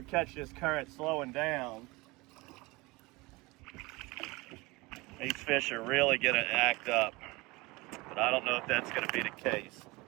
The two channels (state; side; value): quieter; left; 23.5 dB